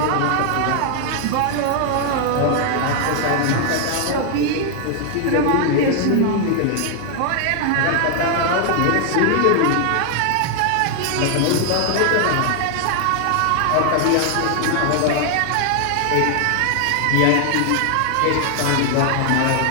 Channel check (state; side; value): different; both; correlation 0.00